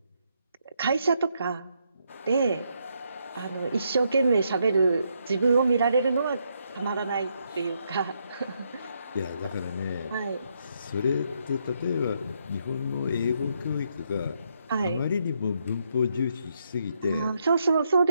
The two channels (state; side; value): inverted; both; correlation -0.77